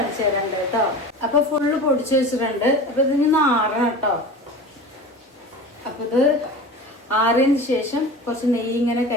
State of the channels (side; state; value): both; normal; correlation 0.34